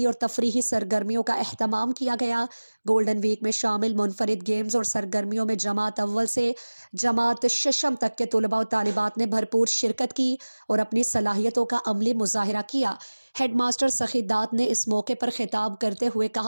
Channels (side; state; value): both; inverted; correlation -1.00